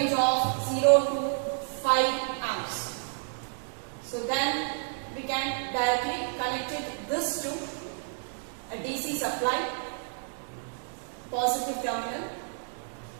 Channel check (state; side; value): silent; left; digital silence